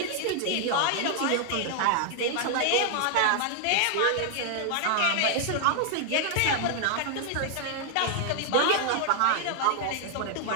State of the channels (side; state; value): both; different; correlation 0.00